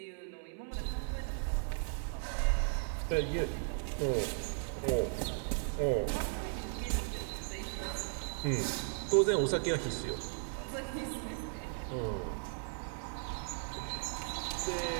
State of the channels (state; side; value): silent; left; 54 dB below the other